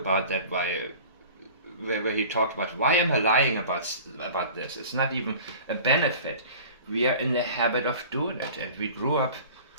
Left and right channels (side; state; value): both; inverted; correlation -0.42